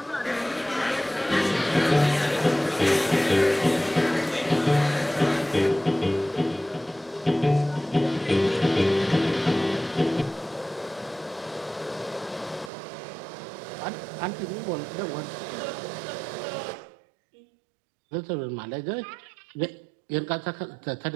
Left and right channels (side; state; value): left; drops out; at 12.7 s